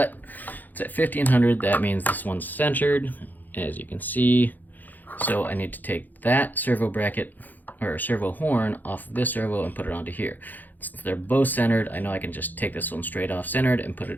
it's at 1500. That means this one's centered, as you can see. So I need to take that servo bracket, or servo horn, off of this servo and put it onto here. Since they're both centered, I know I can just take this one straight off centered and put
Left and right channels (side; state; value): right; late; 0.085 ms